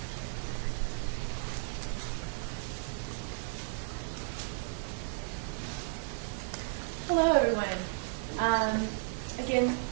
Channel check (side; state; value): left; silent; digital silence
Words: Hello, everyone. Again,